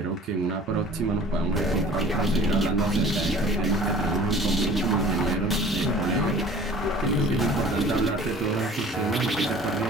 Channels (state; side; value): normal; both; correlation 0.47